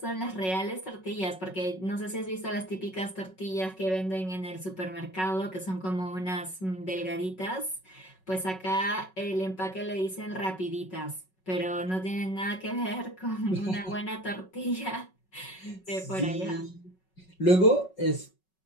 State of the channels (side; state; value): right; late; 5.4 ms